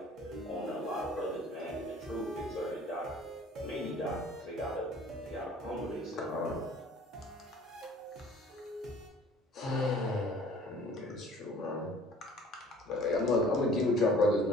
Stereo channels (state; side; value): normal; both; correlation 0.51